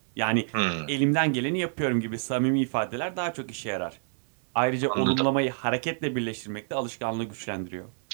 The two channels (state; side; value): silent; left; digital silence